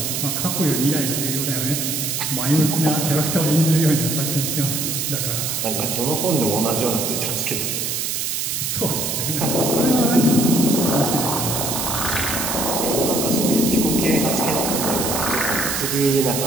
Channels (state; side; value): noise; right; hiss, 1 dB below the sound